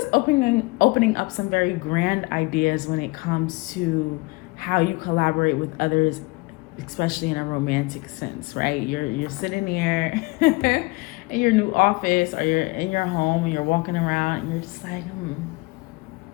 opening up some very grand ideas when it comes to how you collaborate with others, especially in a romantic sense, right? You're sitting here in your new office, or you're in your home and you're walking around and you're just like,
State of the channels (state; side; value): quieter; right; 24.4 dB